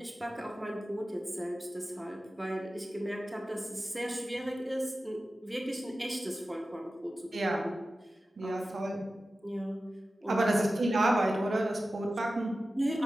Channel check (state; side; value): normal; both; correlation 0.94